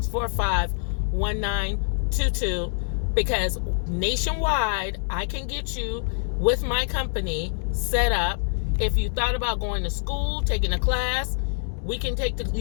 because nationwide, I can get you with my company set up. If you thought about going to school, taking a class, you can take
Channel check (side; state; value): right; silent; digital silence